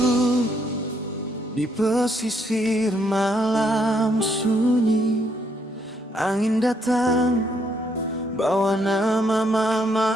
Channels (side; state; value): both; normal; correlation 0.73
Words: di pesisir malam sunyi. Angin datang bawa nama mama